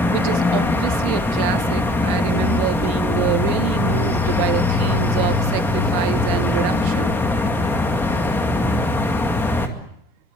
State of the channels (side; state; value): both; normal; correlation 0.53